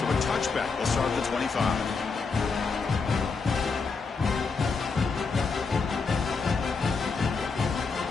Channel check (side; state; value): right; quieter; 4.7 dB